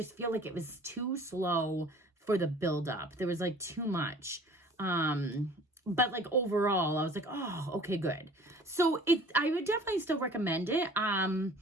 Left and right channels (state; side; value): normal; both; correlation 0.49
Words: feel like it was too slow for the buildup. There was like too much. But like overall, I was like, oh, okay, good. So I would definitely still recommend it.